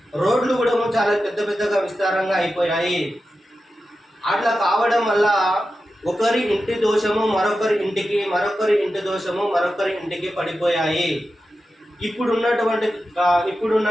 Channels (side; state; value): both; normal; correlation 0.92